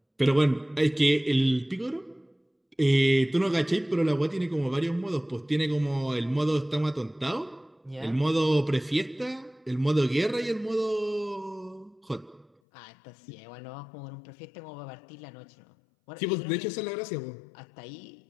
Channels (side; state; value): right; drops out; at 12.5 s